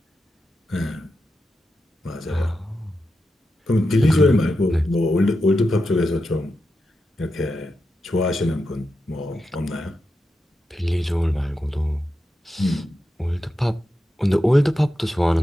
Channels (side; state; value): both; normal; correlation 0.88